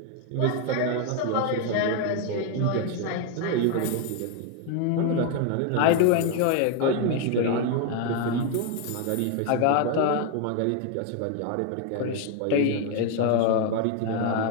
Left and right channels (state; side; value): different; both; correlation 0.01